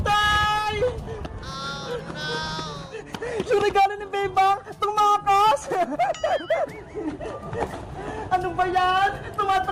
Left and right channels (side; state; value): both; identical; correlation 1.00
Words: Oh no! Yung regalo ni Bebang! Tumakas! Ano ba yan?